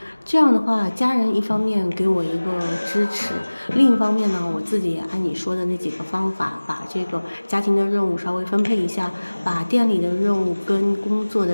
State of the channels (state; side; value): inverted; both; correlation -1.00